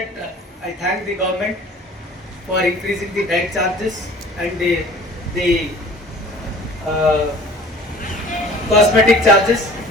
I thank the government for increasing the diet charges and the cosmetic charges.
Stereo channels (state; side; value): normal; both; correlation 0.47